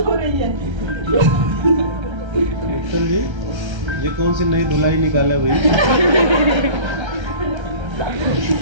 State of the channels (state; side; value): late; left; 1.3 ms